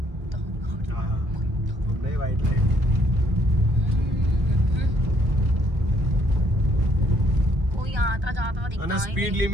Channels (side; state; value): left; late; 1.2 ms